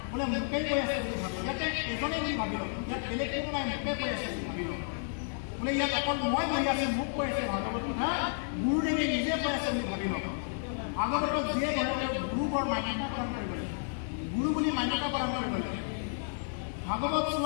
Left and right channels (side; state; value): right; silent; digital silence